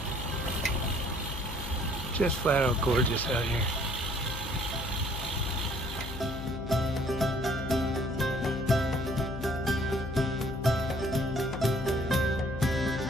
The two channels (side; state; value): left; noise; hum, 8 dB below the sound